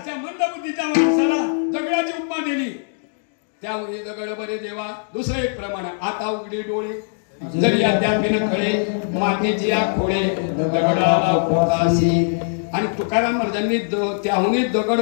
त्यामुळे दगड बरे देवा. दुसरं एक प्रमाण, आता उघडे डोळे जरी अद्यापिन कळे, मातीची या खोळे दगडाला पोताशी. आणि तुकाराम महाराजांनी त्याहूनही दगड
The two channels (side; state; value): right; silent; digital silence